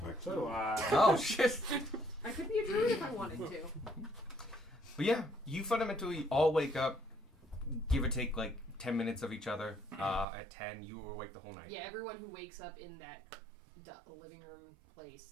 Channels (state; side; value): drops out; left; at 10.2 s